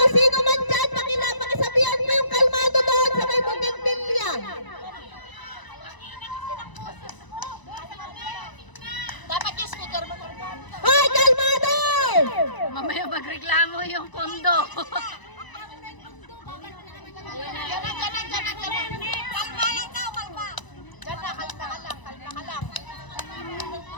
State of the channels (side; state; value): right; late; 1.0 ms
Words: sino man dyan, pakisabihan mo yung kalmado doon sa may bougainvillea. Dapat yung speaker mo. Ay, kalmado! Mamaya magreklamo yung kondo. Kalma lang daw, kalma. Diyan na, kalma ka lang.